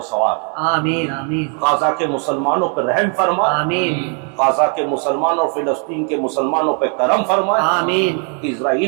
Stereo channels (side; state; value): left; quieter; 39.3 dB